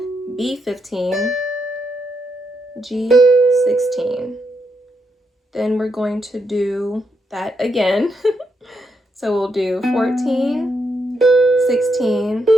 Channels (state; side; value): normal; both; correlation 0.80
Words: B 15, G 16. Then we're going to do that again. So we'll do 14, 16,